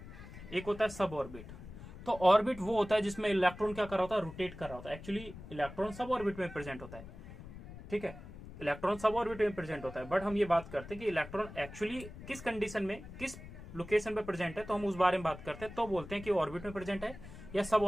एक होता है सब ऑर्बिट। तो ऑर्बिट वो होता है जिसमें इलेक्ट्रॉन क्या कर रहा होता है, रोटेट कर रहा होता है। एक्चुअली इलेक्ट्रॉन सब ऑर्बिट में प्रेजेंट होता है। ठीक है, इलेक्ट्रॉन सब ऑर्बिट में प्रेजेंट होता है, बट हम ये बात करते हैं कि इलेक्ट्रॉन एक्चुअली किस कंडीशन में, किस लोकेशन पे प्रेजेंट है, तो हम उस बारे में बात करते हैं। तो बोलते हैं कि ऑर्बिट में प्रेजेंट है या सब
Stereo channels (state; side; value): noise; left; rumble, 14 dB below the sound